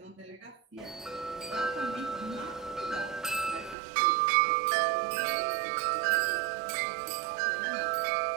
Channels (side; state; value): left; drops out; at 3.8 s